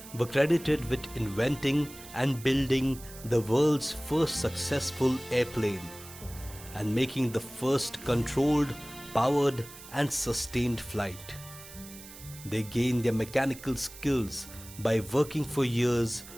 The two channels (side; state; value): right; noise; hiss, 16 dB below the sound